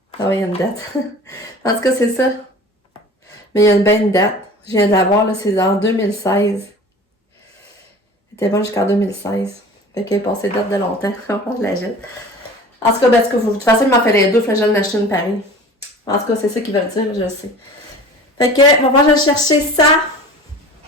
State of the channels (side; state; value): both; normal; correlation 0.41